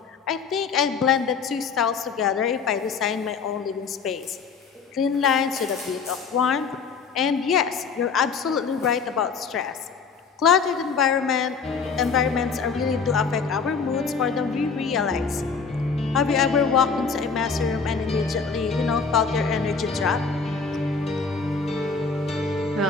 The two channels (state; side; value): quieter; right; 5.3 dB